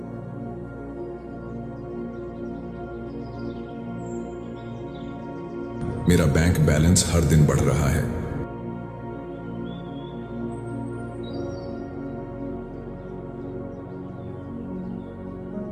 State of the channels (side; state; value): both; identical; correlation 1.00